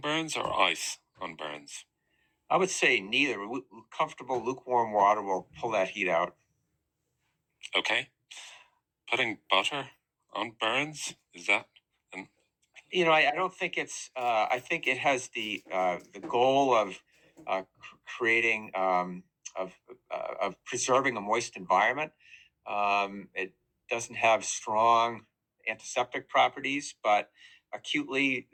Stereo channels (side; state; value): both; identical; correlation 1.00